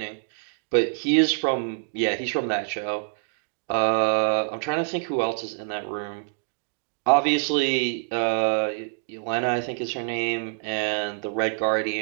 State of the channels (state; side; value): silent; left; digital silence